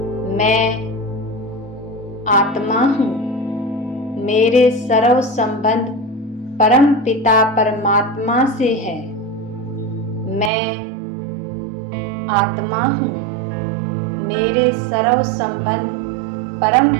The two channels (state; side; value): drops out; left; at 10.5 s